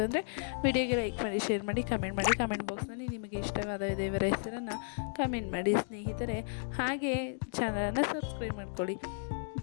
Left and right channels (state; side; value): silent; right; digital silence